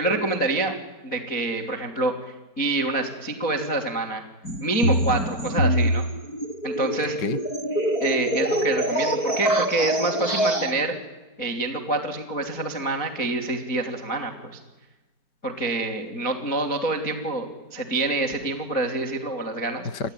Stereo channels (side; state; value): right; late; 4.6 ms